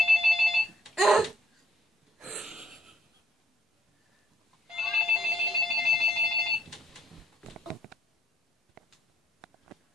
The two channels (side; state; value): both; normal; correlation 0.68